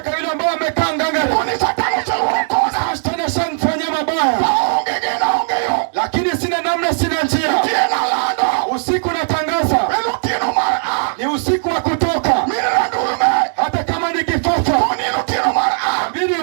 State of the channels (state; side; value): silent; left; digital silence